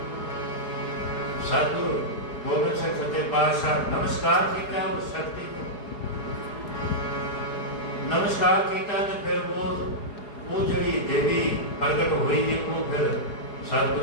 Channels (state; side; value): late; right; 4.8 ms